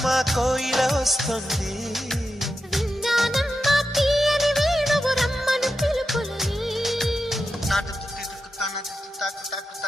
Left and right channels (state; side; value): normal; both; correlation 0.89